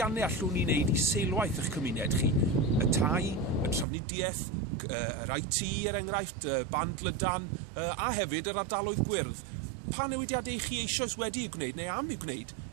allwn ni wneud i seilwaith eich cymuned chi? Y tai, y trafnidiaeth, yr IT er enghraifft, y band lydan a hefyd yr ardaloedd gwyrdd. Pa newidiadau chi eisoes wedi i'w gwneud neu am i'w gwneud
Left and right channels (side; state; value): left; drops out; at 3.9 s